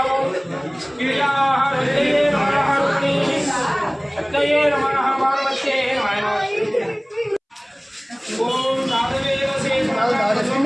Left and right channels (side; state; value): both; identical; correlation 1.00